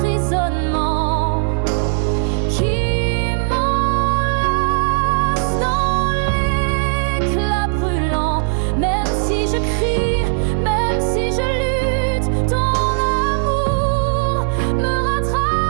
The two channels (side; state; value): left; silent; 59 dB below the other